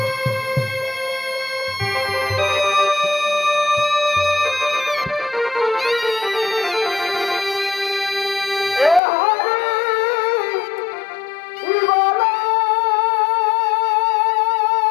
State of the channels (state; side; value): drops out; right; at 9.0 s